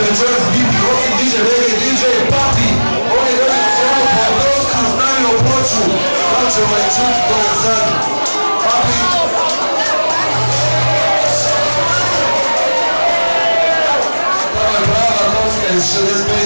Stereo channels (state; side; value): inverted; both; correlation -1.00